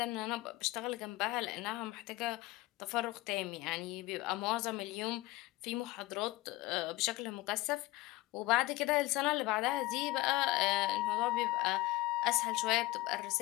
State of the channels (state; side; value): quieter; right; 19.1 dB